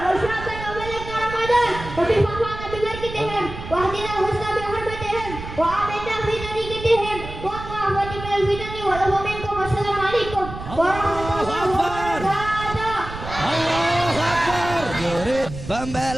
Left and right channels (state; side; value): noise; right; rumble, 11 dB below the sound